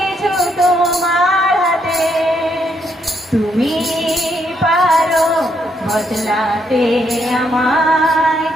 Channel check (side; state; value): both; normal; correlation 0.75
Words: তোমার হাতে। তুমি পারো বদলাতে আমায়,